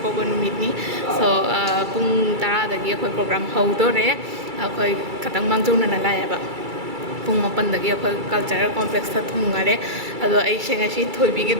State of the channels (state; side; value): late; left; 2.3 ms